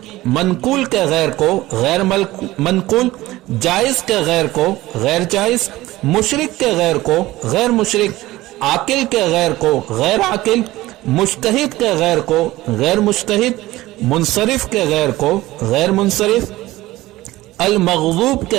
मनकूल के गैर को गैर मनकूल, जायज के गैर को गैर जायज, मुशरिक के गैर को गैर मुशरिक, आकिल के गैर को गैर आकिल, मुज्तहिद के गैर को गैर मुज्तहिद, मुनसरिफ के गैर को गैर मुनसरिफ, अल मग़ज़ूब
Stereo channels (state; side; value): quieter; left; 17.6 dB